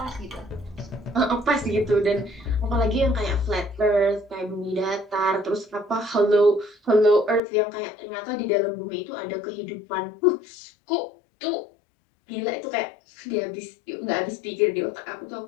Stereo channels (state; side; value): drops out; right; at 7.4 s